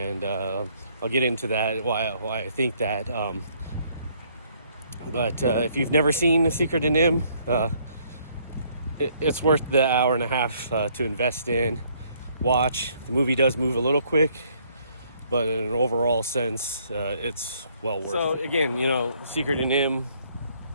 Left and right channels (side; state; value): both; inverted; correlation -0.65